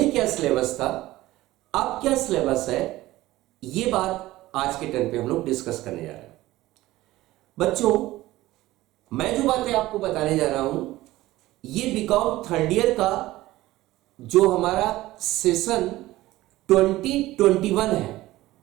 क्या सिलेबस था, अब क्या सिलेबस है, ये बात आज के टर्न पे हम लोग डिस्कस करने जा रहे हैं। बच्चों, मैं जो बातें आपको बताने जा रहा हूं, ये बीकॉम थर्ड ईयर का जो हमारा सेशन 2021 है,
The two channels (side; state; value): left; quieter; 17.1 dB